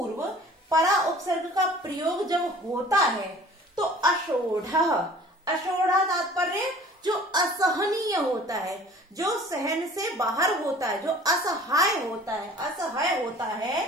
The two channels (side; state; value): both; normal; correlation 0.48